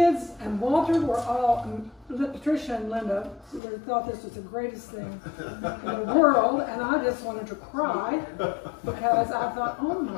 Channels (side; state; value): right; drops out; at 3.6 s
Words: and Walter were all, Patricia and Linda, they thought this was the greatest thing in the world, and I just wanted to cry because I thought, oh